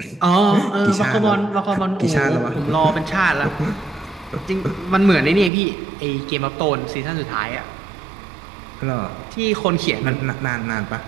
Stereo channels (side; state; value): left; drops out; at 5.5 s